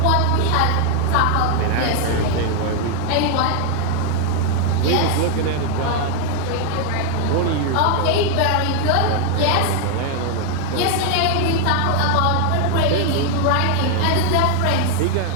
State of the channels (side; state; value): both; different; correlation 0.00